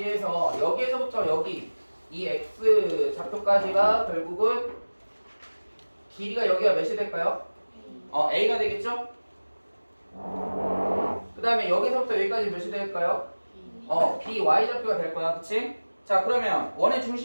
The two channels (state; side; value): inverted; both; correlation -1.00